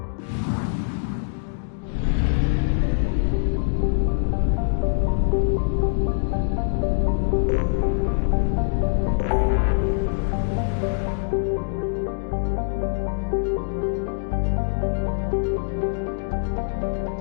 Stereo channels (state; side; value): silent; right; digital silence